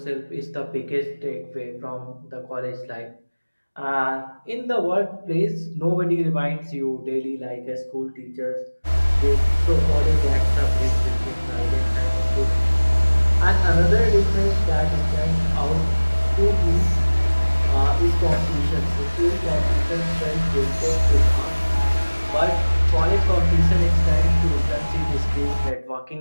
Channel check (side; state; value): both; inverted; correlation -1.00